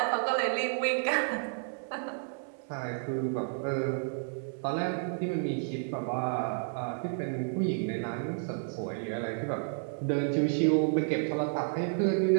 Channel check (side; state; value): left; silent; digital silence